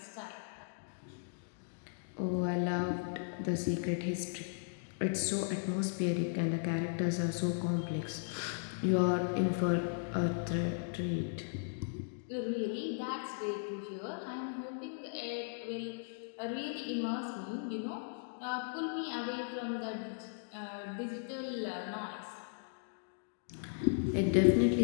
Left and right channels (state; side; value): silent; right; digital silence